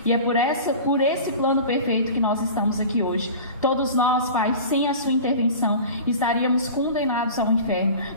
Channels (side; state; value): both; inverted; correlation -0.37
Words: e é por esse plano perfeito que nós estamos aqui hoje. Todos nós, Pai, sem a sua intervenção, estaríamos condenados ao inferno,